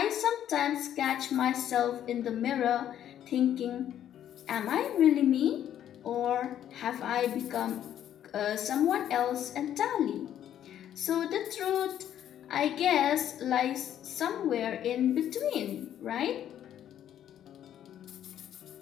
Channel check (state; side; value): quieter; right; 10.7 dB